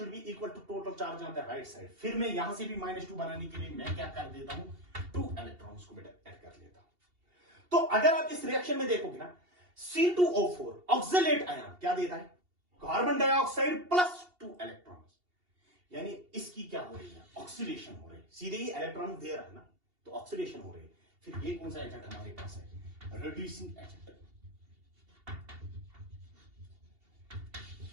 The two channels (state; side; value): late; left; 2.8 ms